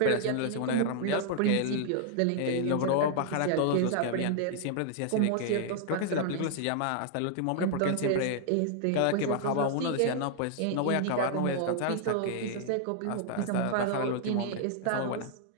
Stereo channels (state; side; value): different; both; correlation 0.00